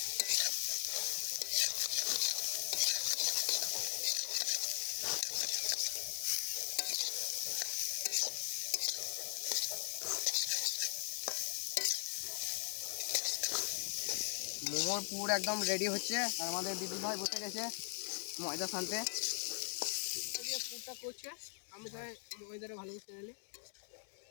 মোমোর পুর একদম রেডি হচ্ছে, আর আমাদের বিদুল ভাই বসে গেছে ময়দা ছানতে। পুরটা করছে, আমি তাই ময়দাটা ভালো করে নিলি,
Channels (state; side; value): silent; right; 51 dB below the other